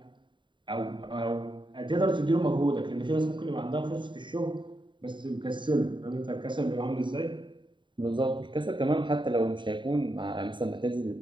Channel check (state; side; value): late; left; 0.23 ms